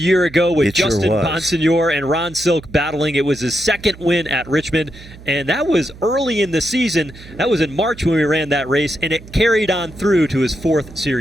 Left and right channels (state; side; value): noise; right; hum, 18 dB below the sound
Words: ago with Justin Bonsignore and Ron Silk battling. It was his second win at Richmond, and that was early in the season. That was in March when we ran that race, and it carried on through to his 4th